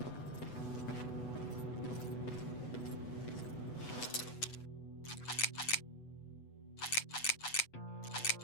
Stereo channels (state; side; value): late; right; 8.1 ms